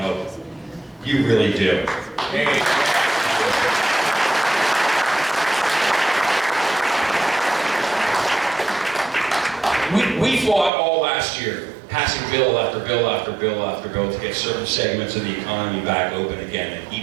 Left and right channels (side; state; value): left; drops out; at 10.7 s